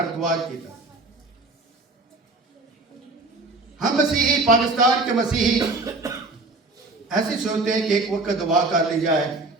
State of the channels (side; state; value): left; quieter; 3.2 dB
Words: द्वार की तरह। हम मसीही, पाकिस्तान के मसीही ऐसे सोचते हैं कि एक वक्त दुआ कर ली जाए,